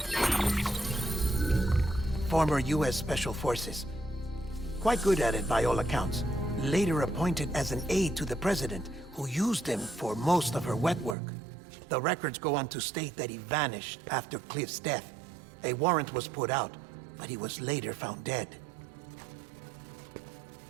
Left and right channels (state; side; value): drops out; left; at 11.2 s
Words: Former U.S. Special Forces. Quite good at it by all accounts. Later appointed as an aide to the president, who used him for most of her wet work. The records go on to state that he vanished after Cliff's death. A warrant was put out, but he was later found dead.